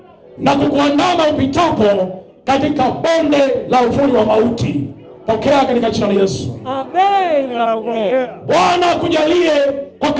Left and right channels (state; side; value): identical; both; correlation 1.00